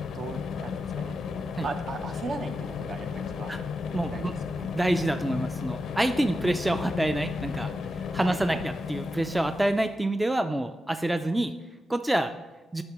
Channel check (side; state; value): both; normal; correlation 0.89